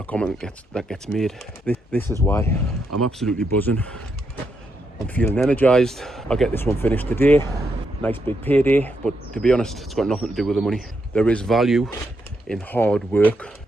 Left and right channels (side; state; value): both; normal; correlation 0.80